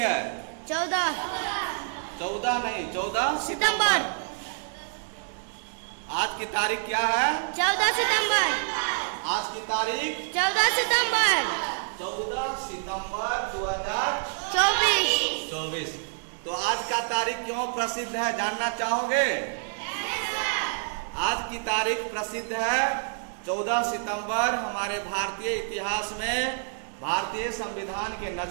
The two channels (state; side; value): silent; left; digital silence